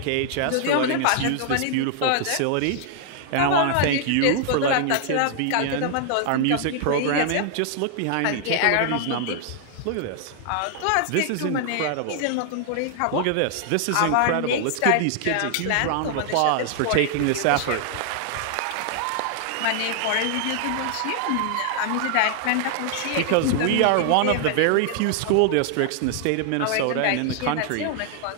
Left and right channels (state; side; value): different; both; correlation 0.00